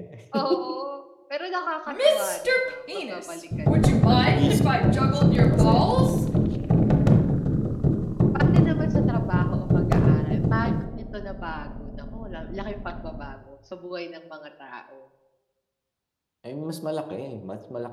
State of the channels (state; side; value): identical; both; correlation 1.00